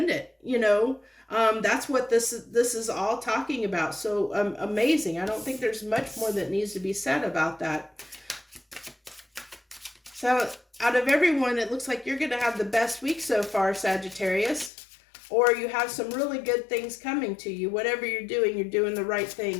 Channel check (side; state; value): right; drops out; at 14.7 s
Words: you know. That's what this is all talking about. So amazing. I don't think there's much more that needs to be said about that. So out of everyone, it looks like you're going to have the best week so far, Sagittarius. Or you have some really good things coming to you. Whatever you're doing the right